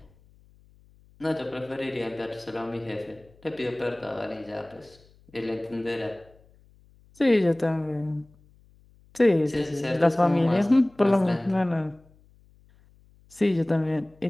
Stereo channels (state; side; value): noise; left; hum, 29 dB below the sound